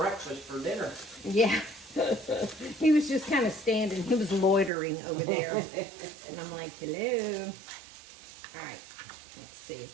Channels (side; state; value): left; drops out; at 4.7 s